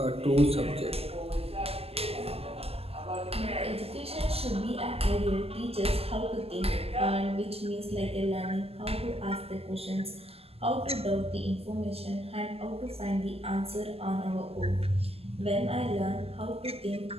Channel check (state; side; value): late; left; 0.29 ms